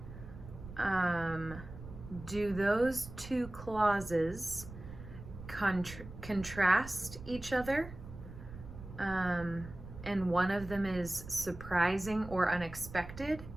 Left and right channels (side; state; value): right; noise; rumble, 13 dB below the sound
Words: do those two clauses contrast each other? And one of them is surprising or unexpected